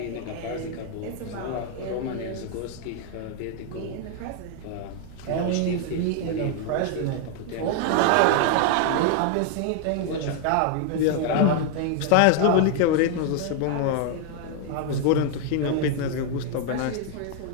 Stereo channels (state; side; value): different; both; correlation 0.00